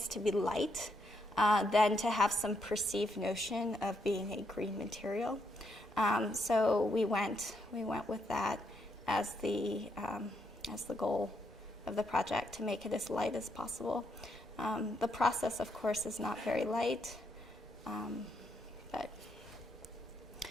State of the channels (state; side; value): normal; both; correlation 0.77